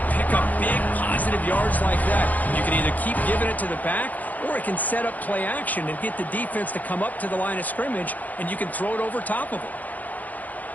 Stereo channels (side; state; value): right; late; 0.079 ms